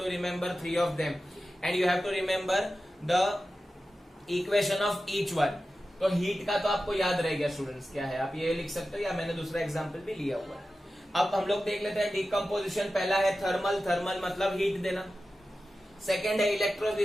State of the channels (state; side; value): normal; both; correlation 0.93